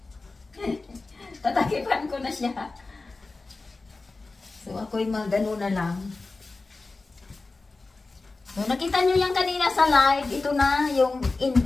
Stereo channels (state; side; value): quieter; right; 3.6 dB